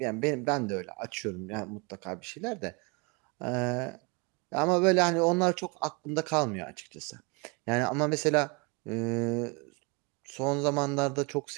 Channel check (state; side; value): quieter; left; 30.0 dB